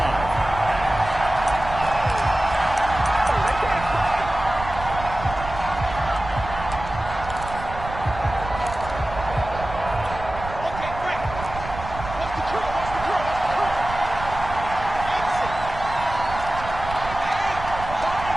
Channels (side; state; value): right; noise; rumble, 10 dB below the sound